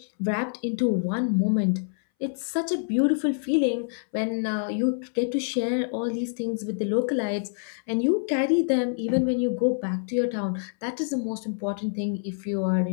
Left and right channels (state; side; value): silent; right; 61 dB below the other